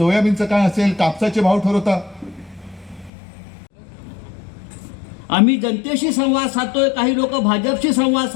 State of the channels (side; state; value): right; drops out; at 3.1 s